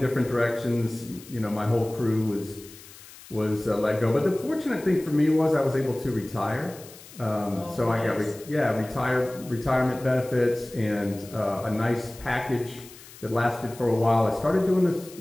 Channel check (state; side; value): noise; left; hiss, 19 dB below the sound